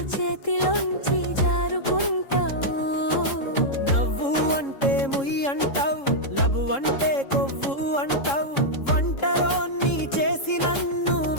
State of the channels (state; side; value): late; right; 3.7 ms